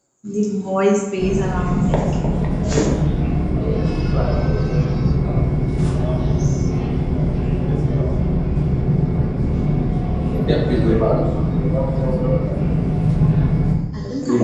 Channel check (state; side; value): identical; both; correlation 1.00